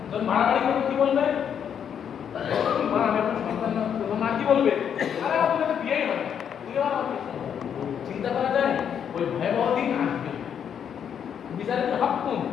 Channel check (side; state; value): right; quieter; 8.3 dB